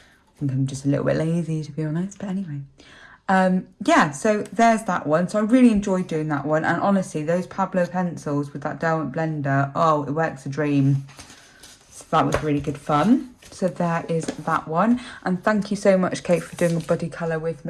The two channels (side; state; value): both; identical; correlation 1.00